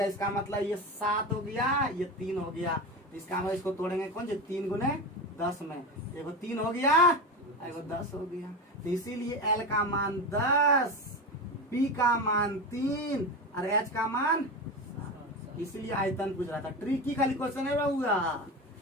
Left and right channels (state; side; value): normal; both; correlation 0.22